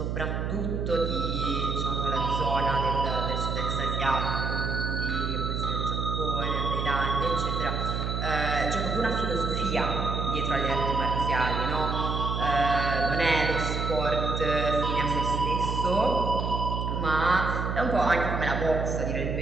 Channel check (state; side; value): noise; right; hum, 2 dB below the sound